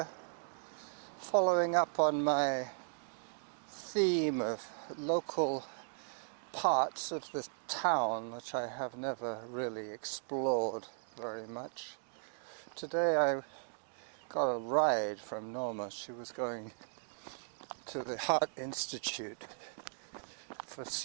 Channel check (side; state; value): left; silent; digital silence